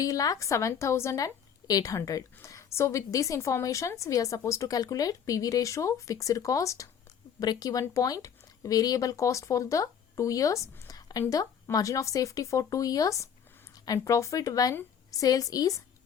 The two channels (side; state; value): right; quieter; 8.0 dB